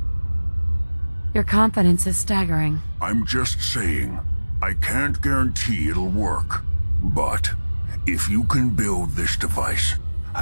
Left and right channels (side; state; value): both; inverted; correlation -1.00